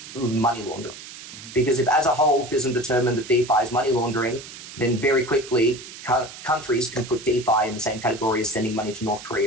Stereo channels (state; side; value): noise; right; hiss, 14 dB below the sound